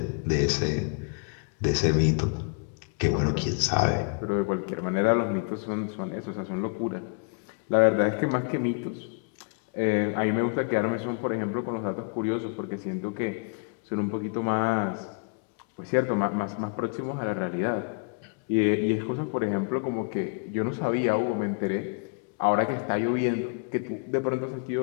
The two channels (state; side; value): quieter; right; 36.0 dB